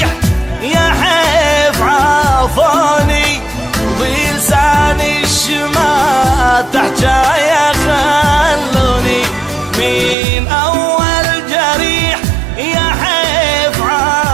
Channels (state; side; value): drops out; left; at 10.2 s